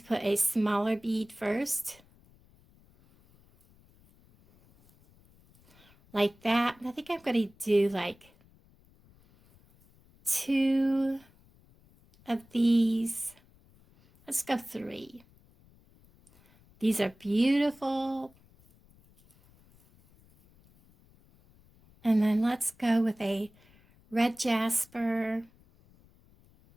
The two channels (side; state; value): left; noise; rumble, 29 dB below the sound